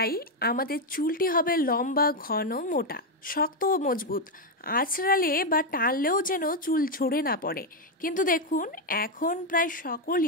আমাদের চুলটি হবে লম্বা, ঘন, মোটা, শক্ত ও মজবুত। আঁচড়ালে বা টানলেও যেন চুল ঝরে না পড়ে। কিন্তু দেখুন, এখন প্রায়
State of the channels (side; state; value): both; normal; correlation 0.04